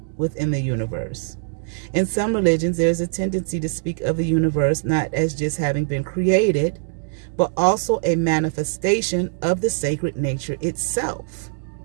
within the universe. In some religions, there's a tendency to speak of the universe not as just having been created, but also a manifestation of the sacred nature itself,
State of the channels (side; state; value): left; silent; digital silence